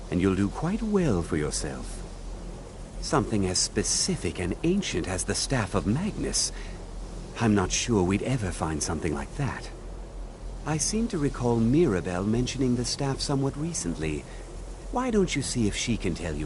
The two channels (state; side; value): identical; both; correlation 1.00